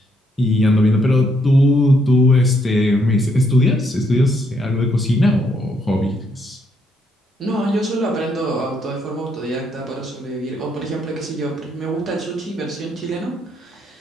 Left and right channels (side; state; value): both; normal; correlation 0.73